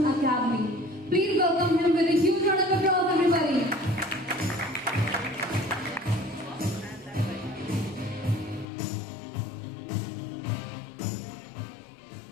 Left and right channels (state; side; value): drops out; right; at 8.7 s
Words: Academy. Please welcome him with a huge round of applause, everybody.